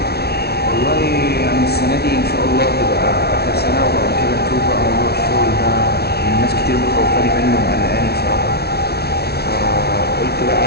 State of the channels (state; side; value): late; right; 0.46 ms